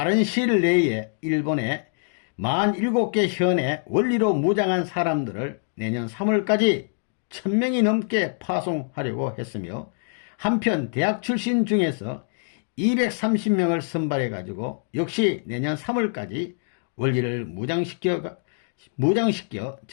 시일 내에 일본에 47개 현의 원리로 무장한 사람들을 내년 3월까지 1000명이 넘게 파송하려고 했으며, 한편 대학 출신 중에서 230명을 선발해 가지고 역시 내년 3월까지 원리를 무장시켜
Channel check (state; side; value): silent; right; digital silence